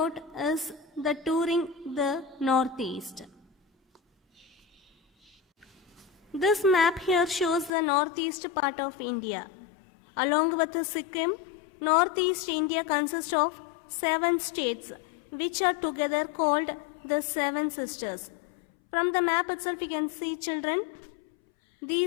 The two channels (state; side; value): drops out; right; at 7.7 s